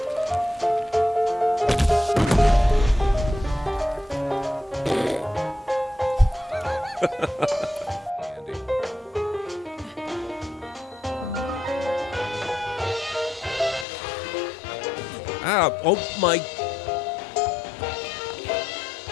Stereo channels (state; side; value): drops out; right; at 13.9 s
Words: Ah, oh my.